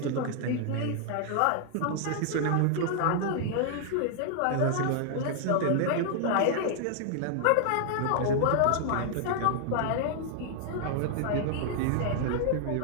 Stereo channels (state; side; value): different; both; correlation -0.01